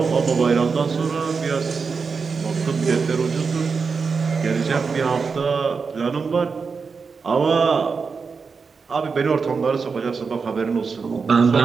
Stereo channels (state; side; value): quieter; left; 5.1 dB